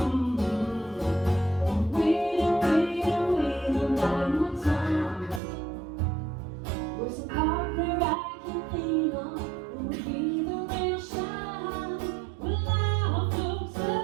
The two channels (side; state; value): left; drops out; at 5.4 s